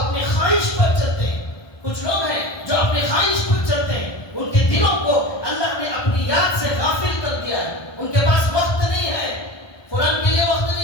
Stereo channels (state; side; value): late; right; 1.2 ms